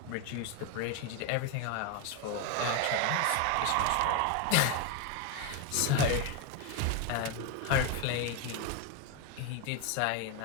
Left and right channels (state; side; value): different; both; correlation 0.02